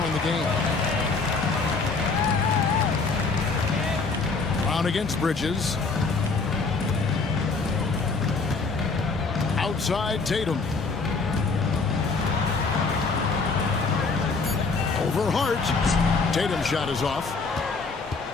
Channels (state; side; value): quieter; right; 4.2 dB